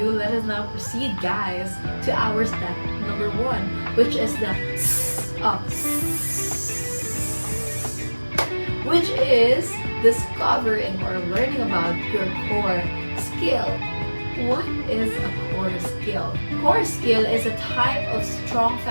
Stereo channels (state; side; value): inverted; both; correlation -1.00